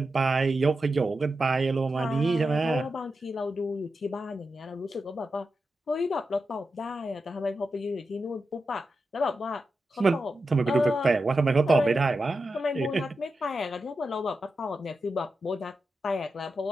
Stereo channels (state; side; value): normal; both; correlation 0.89